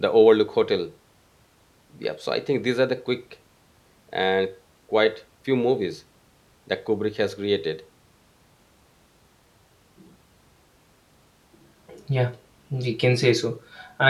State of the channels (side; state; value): both; identical; correlation 1.00